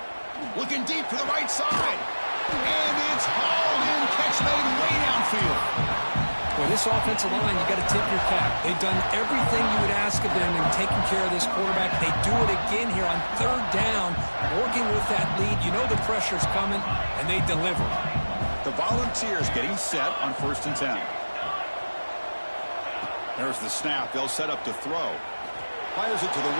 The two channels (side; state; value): both; inverted; correlation -1.00